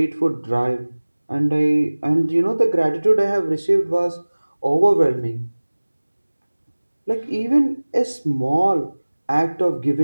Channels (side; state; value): both; inverted; correlation -1.00